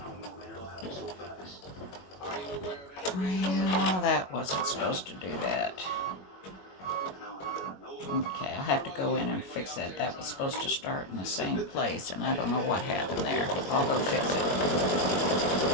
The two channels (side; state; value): right; late; 21 ms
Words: Well, that wasn't supposed to do that. Okay, I'll have to go in and fix that. That was supposed to start in the same place, and I don't know what happened there. I'll go fix it.